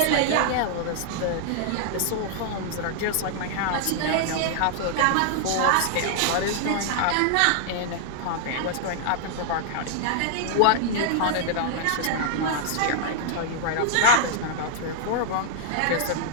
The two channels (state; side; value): different; both; correlation -0.01